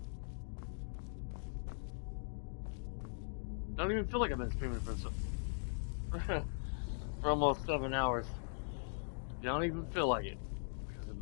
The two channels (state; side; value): silent; right; digital silence